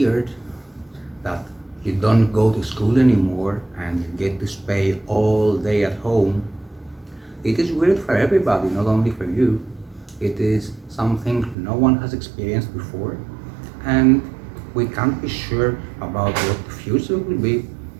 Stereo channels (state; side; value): drops out; left; at 11.6 s